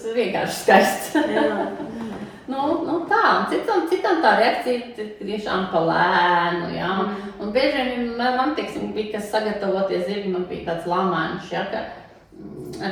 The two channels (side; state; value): both; identical; correlation 1.00